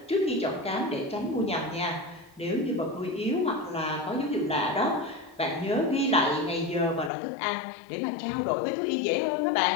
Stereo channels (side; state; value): right; drops out; at 7.1 s